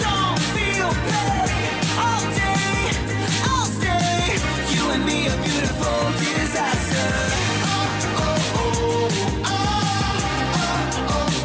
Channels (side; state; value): both; identical; correlation 1.00